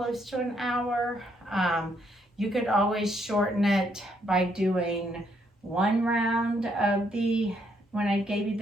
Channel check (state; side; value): normal; both; correlation 0.73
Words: to an hour. You could always shorten it by doing 1 round of when I gave you